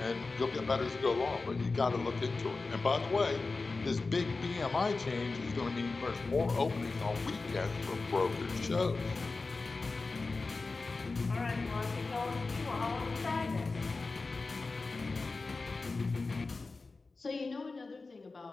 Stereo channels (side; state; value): right; quieter; 3.8 dB